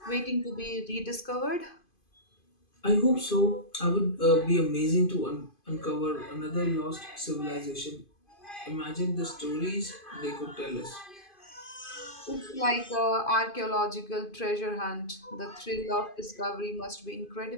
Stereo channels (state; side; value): late; right; 2.5 ms